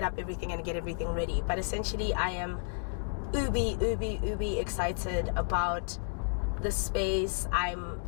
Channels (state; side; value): silent; right; digital silence